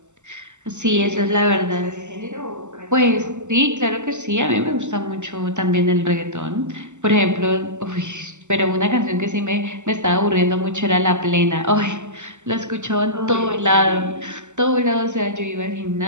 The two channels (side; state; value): left; late; 0.84 ms